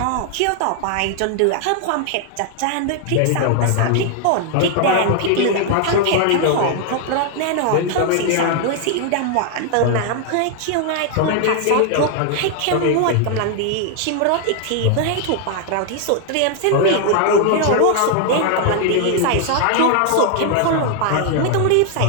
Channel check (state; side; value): different; both; correlation 0.00